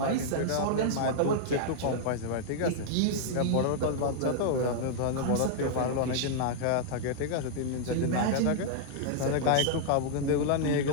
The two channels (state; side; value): different; both; correlation -0.01